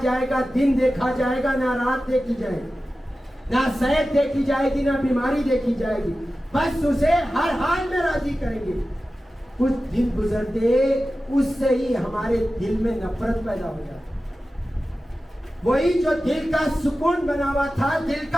جائے گا، دن دیکھا جائے گا، نہ رات دیکھی جائے گی، نہ صحت دیکھی جائے گی، نہ بیماری دیکھی جائے گی، بس اسے ہر حال میں راضی کریں گے۔ کچھ دن گزرتے اس سے ہی ہمارے دل میں نفرت پیدا ہو جاتی، وہی جو دل کا سکون بنا ہوا تھا دل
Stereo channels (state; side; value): normal; both; correlation 0.94